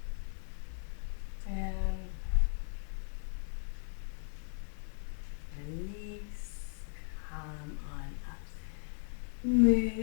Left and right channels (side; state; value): right; silent; 53 dB below the other